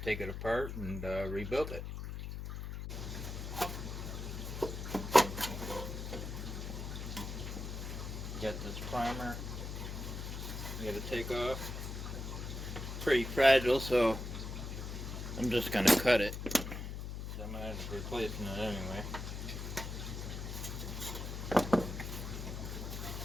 take it apart and rebuild it. Got this primer you got to take off. Pretty fragile, so I'm just going to cut it. So I'm going to end up replacing it anyway.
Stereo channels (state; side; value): noise; left; hum, 6 dB below the sound